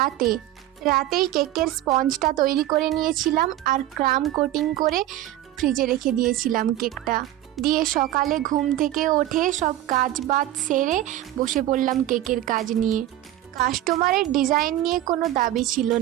রাতেই কেকের স্পঞ্জটা তৈরি করে নিয়েছিলাম আর ক্রাম কোটিং করে ফ্রিজে রেখে দিয়েছিলাম কেকটা দিয়ে। সকালে ঘুম থেকে উঠে সব কাজ বাজ সেরে বসে পড়লাম কেকের কাজ নিয়ে। কাস্টমারের ডিজাইন নিয়ে কোনো দাবি ছিল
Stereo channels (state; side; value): quieter; left; 14.0 dB